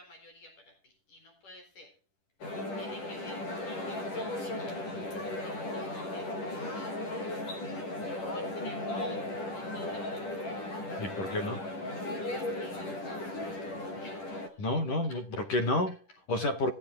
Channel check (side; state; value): right; late; 10 ms